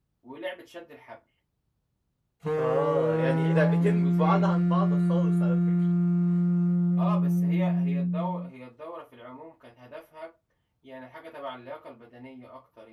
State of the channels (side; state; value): both; identical; correlation 1.00